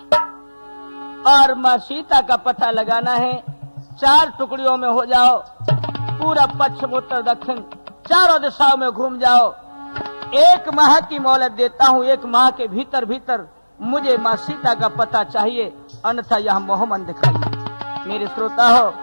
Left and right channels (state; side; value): inverted; both; correlation -1.00